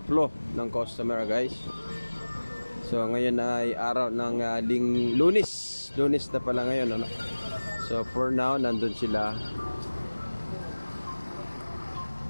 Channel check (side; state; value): both; inverted; correlation -1.00